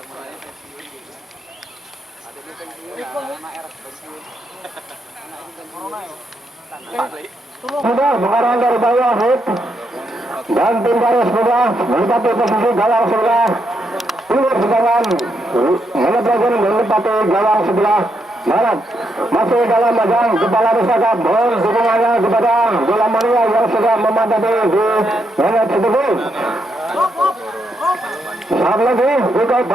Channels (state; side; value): normal; both; correlation 0.79